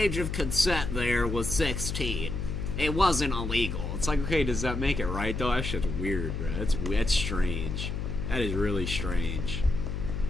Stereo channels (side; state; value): left; noise; hum, 3 dB below the sound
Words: of consent there was 16. It wasn't illegal. It's like, okay, does that make it right, though? That shit's weird, bro. That's strange. That is really strange.